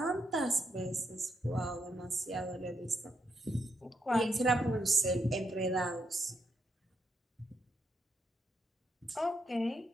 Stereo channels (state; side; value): normal; both; correlation 0.80